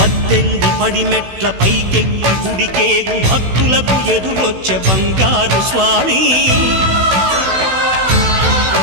18 పడిమెట్ల పైకెక్కి గుడికేగు భక్తులకు ఎదురొచ్చే బంగారు స్వామి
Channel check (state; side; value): late; left; 16 ms